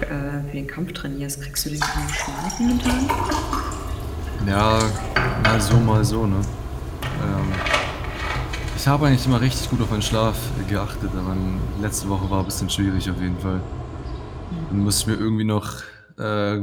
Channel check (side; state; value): both; identical; correlation 1.00